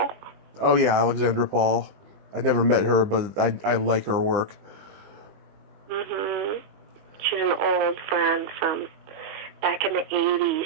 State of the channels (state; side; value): late; left; 20 ms